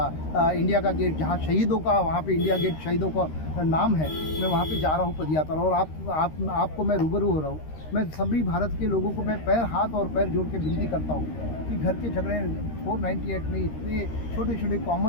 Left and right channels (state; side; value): late; right; 13 ms